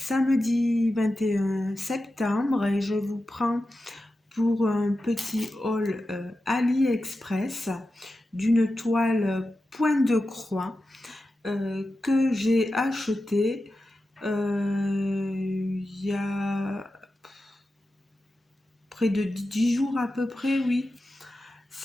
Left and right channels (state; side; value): normal; both; correlation 0.92